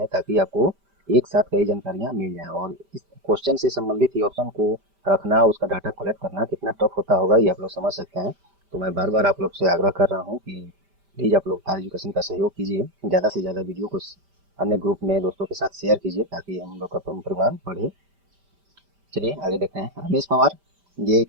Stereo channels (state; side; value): late; left; 5.1 ms